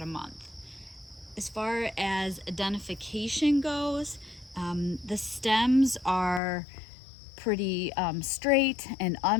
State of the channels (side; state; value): right; drops out; at 6.4 s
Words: a month. As far as identification goes, the stems are pretty straight and